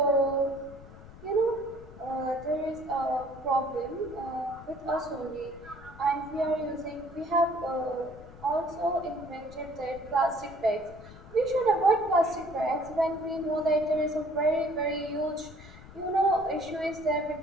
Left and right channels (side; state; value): left; noise; rumble, 18 dB below the sound